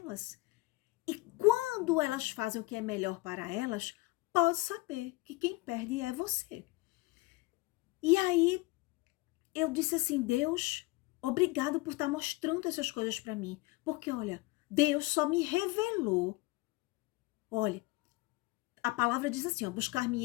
E quando elas fazem o que é melhor para elas, pode saber que quem perde é você. E aí eu disse assim, Deus, obrigado por estar mostrando essas coisas para mim. Porque, olha, Deus só me revelou. Olha, a palavra diz assim, ó,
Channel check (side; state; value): right; quieter; 21.8 dB